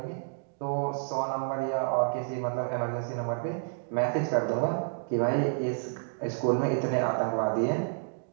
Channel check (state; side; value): silent; left; digital silence